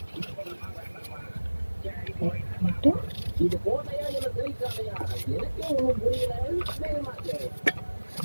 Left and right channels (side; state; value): both; inverted; correlation -1.00